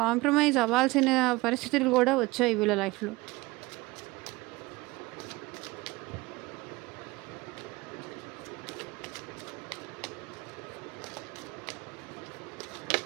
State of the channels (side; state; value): left; quieter; 21.7 dB